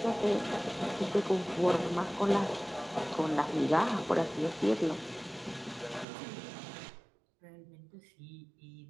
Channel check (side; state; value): left; drops out; at 6.1 s